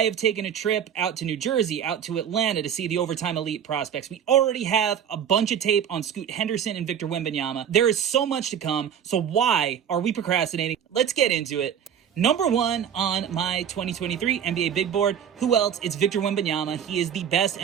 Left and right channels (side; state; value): left; quieter; 8.7 dB